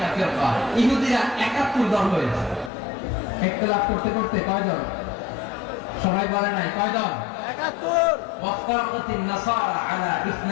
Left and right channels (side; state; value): right; drops out; at 2.7 s